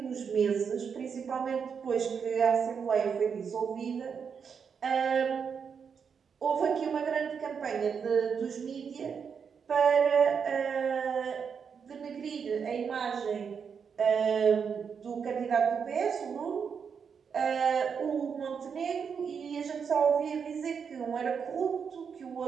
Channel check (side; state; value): left; quieter; 6.5 dB